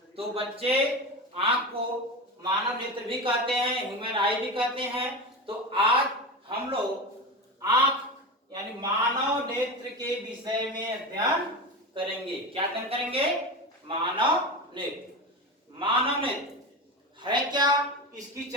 तो बच्चे, आंख को मानव नेत्र भी कहते हैं, ह्यूमन आई भी कहते हैं। तो आज हम लोग आंख यानी मानव नेत्र के विषय में अध्ययन करेंगे। क्या अध्ययन करेंगे? मानव नेत्र। मानव नेत्र है क्या, इसकी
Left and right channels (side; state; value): both; normal; correlation 0.23